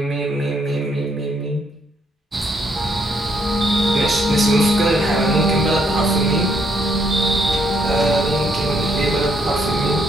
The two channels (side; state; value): both; normal; correlation 0.72